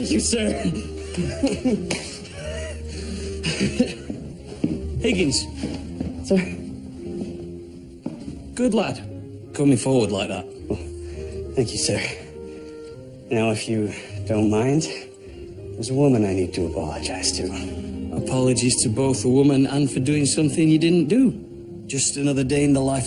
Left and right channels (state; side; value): identical; both; correlation 1.00